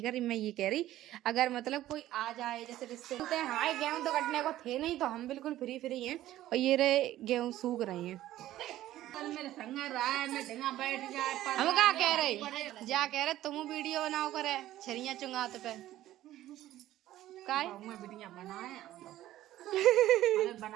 कर रही मैं, ये कह रही अगर मतलब कोई आ जाए, जैसे रिश्ते होते हैं, हमारे गेहूं तो कटने को थे नहीं, तो हम बिल्कुल फ्री हैं और ये रहे गेहूं सूख रहे हैं। मेरे संग रहा है, मैं ढंगा बैठ जाए पर हम क्या कह रहे, जा कह रहे तुम वीडियो बनाओ करे छरिया चुंगात पे काय मैं वीडियो बनाए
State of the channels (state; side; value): quieter; left; 14.2 dB